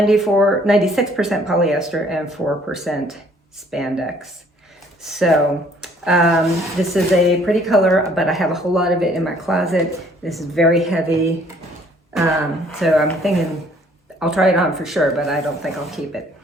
polyester and 4% spandex. So this is a pretty color, but I have a whole lot of it in my closet. This is very heavy. So I'm thinking I'll try it on for sure, but I don't think I'll keep it.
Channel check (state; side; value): normal; both; correlation 0.60